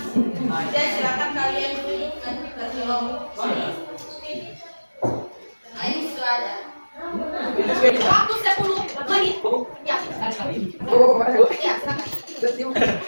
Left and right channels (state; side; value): inverted; both; correlation -1.00